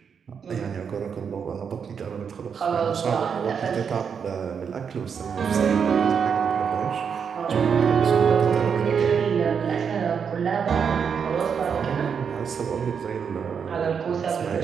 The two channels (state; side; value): quieter; left; 6.8 dB